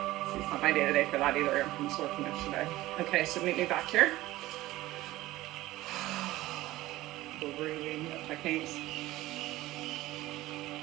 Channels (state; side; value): quieter; left; 17.0 dB